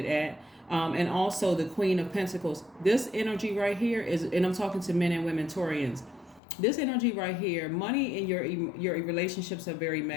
at. And also the Queen of Pentacles. This energy right here is, and I'm talking to men and women Taurians, This energy right here, money in your relationships are very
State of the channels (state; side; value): drops out; right; at 6.4 s